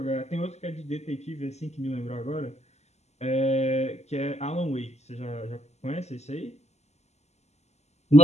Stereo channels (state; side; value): late; right; 0.32 ms